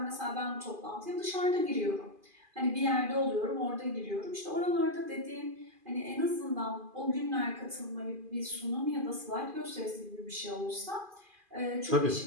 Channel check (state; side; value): late; left; 2.5 ms